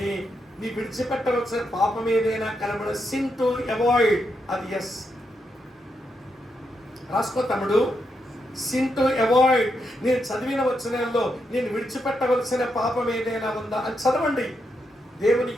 నీ విడిచిపెట్టవలసిన పాపం ఏదైనా కనబడ, సిన్ టు అవాయిడ్, అది ఎస్. రాసుకో తమ్ముడు. సిన్ టు అవాయిడ్, నేను చదివిన వచనాల్లో నేను విడిచిపెట్టవలసిన పాపం ఏదైనా ఉందా అని చదవండి. దేవుని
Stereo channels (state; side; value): normal; both; correlation 0.82